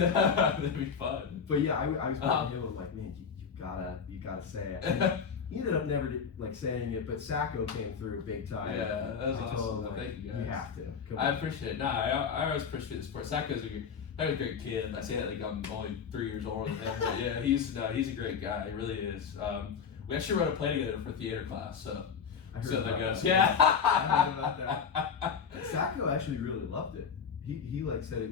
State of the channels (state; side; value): quieter; right; 6.4 dB